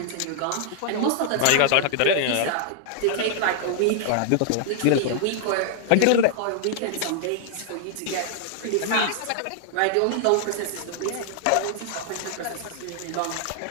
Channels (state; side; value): different; both; correlation -0.01